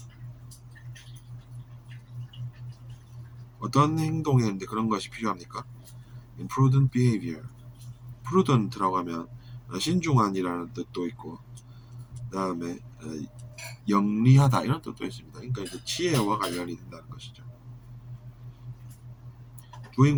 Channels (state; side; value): identical; both; correlation 1.00